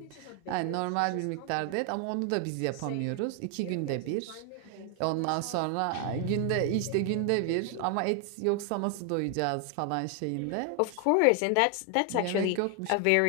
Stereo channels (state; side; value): different; both; correlation 0.00